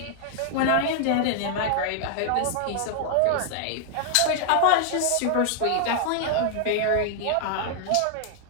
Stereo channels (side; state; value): both; different; correlation 0.00